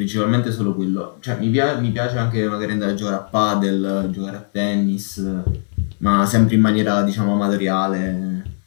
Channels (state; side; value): silent; right; 66 dB below the other